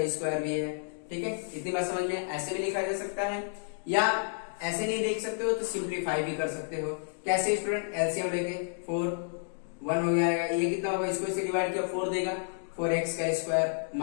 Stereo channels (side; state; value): right; silent; digital silence